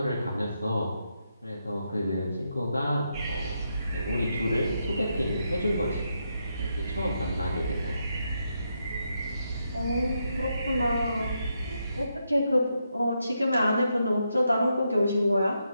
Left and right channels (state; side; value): inverted; both; correlation -0.82